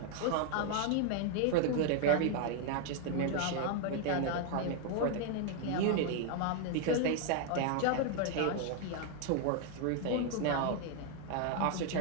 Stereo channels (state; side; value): different; both; correlation 0.00